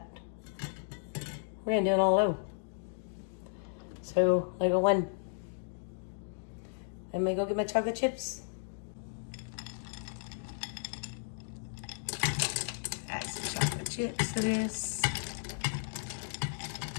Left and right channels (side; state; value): right; silent; digital silence